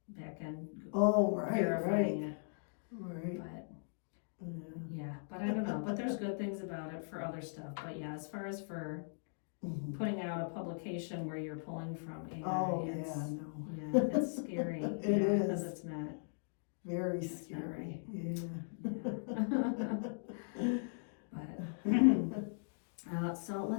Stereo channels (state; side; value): silent; right; digital silence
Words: back end verifying it. Right. But I don't know. But there's good things about it for other stuff. But as far as for putting out a publication where you're pulling from AI, it's scary. It is. Because it's not very scary. But so